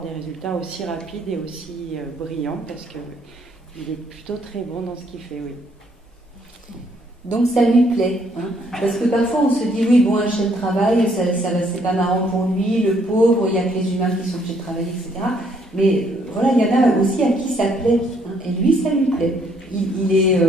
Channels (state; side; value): normal; both; correlation 0.68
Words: des résultats aussi rapides et aussi brillants parce qu'il est plutôt très bon dans ce qu'il fait, oui. Donc ça lui plaît, parce que parfois on se dit oui bon un chien de travail c'est pas marrant pour lui, le pauvre, il y a que les humains qui sont obligés de travailler, etc. Mais voilà, il y en a aussi à qui ça plaît, et lui ça lui plaît. Il est